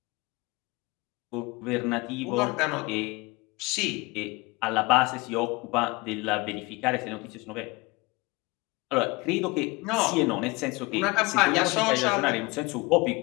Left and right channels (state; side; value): quieter; right; 24.6 dB